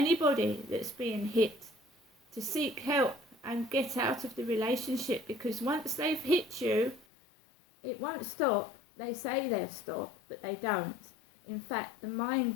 that's being hit to seek help and get out of the relationship, because once they've hit you, it won't stop. They say they'll stop, but they don't. In fact, the mind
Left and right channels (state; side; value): drops out; right; at 7.1 s